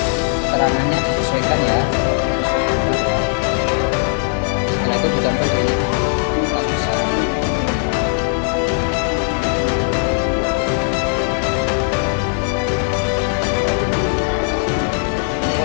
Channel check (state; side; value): silent; right; 62 dB below the other